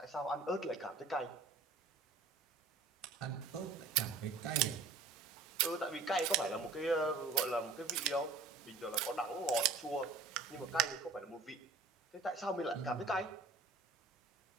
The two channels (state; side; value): quieter; left; 4.1 dB